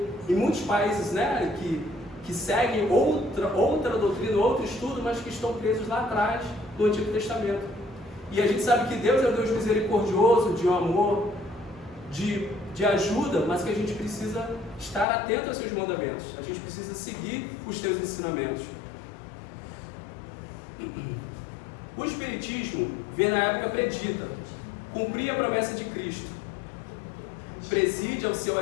em muitos países, né, que seguem outra doutrina, outro estudo, mas que estão presos lá atrás do Antigo Testamento. E a gente sabe que Deus é um Deus misericordioso, de amor, de ajuda, mas que a gente precisa estar atento aos seus mandamentos. A gente precisa seguir os teus ensinamentos. O Espiritismo veio na época predita, cumpria a promessa de Cristo, preside ao seu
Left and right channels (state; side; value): drops out; right; at 15.1 s